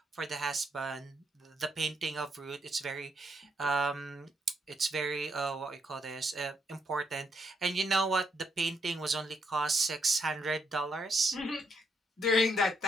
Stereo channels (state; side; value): normal; both; correlation 0.76